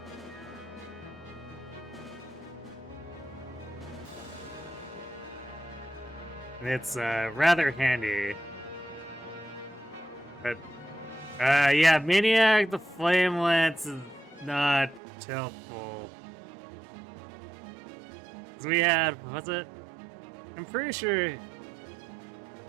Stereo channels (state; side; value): drops out; left; at 15.0 s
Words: It's rather handy. But, yeah, Maniac, the Flame Lance is not helpful. Because we had, was it? I'm pretty sure it